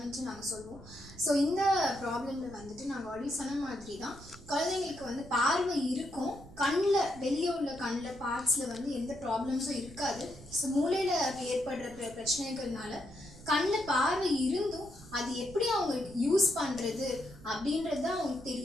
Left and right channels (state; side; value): noise; right; rumble, 19 dB below the sound